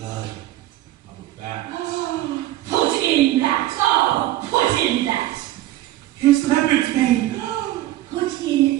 of a bat. Oh, put in that, oh, put in that. Here's leopard's mane. Put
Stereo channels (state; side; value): quieter; left; 15.4 dB